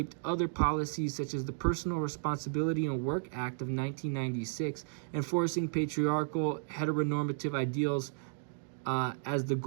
other policies such as the Personal Responsibility and Work Act of 1996, enforcing patriarchal heteronormative ideals as the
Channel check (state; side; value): silent; left; digital silence